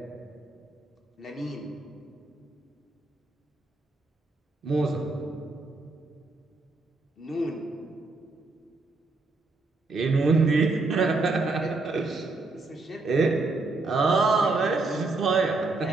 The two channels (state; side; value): quieter; left; 3.4 dB